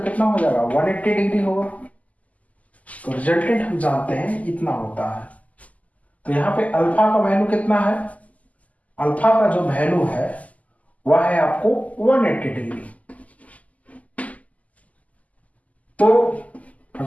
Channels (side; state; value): right; late; 0.074 ms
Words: कितना हो जाएगा 180 डिग्री होगा। तो रिजल्टेंट हम जानते हैं इतना होता है। तो यहाँ पे अल्फा का वैल्यू कितना है, अल्फा का जो वैल्यू है वह है आपको 180 डिग्री। तो